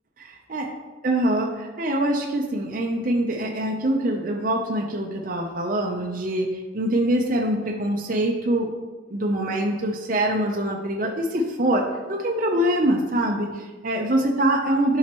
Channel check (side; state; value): both; normal; correlation 0.44